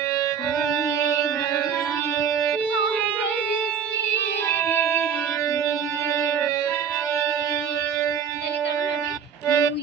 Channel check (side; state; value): left; quieter; 7.3 dB